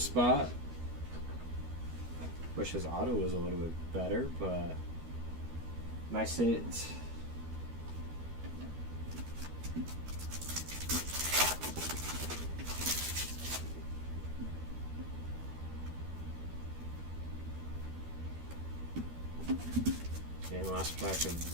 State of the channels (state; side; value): late; left; 12 ms